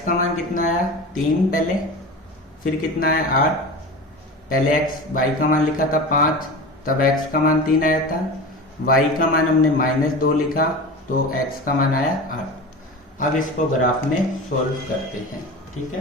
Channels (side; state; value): both; normal; correlation 0.30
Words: का मान कितना आया 3 पहले, फिर कितना आया 8, पहले y का मान लिखा था 5, तब x का मान 3 आया था, y का मान हमने -2 लिखा तो x का मान आया 8। अब इसको ग्राफ में सोल्व करते हैं, ठीक